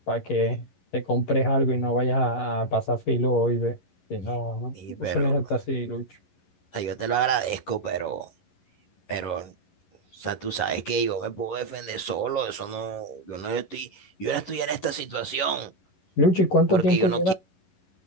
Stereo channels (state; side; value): late; right; 11 ms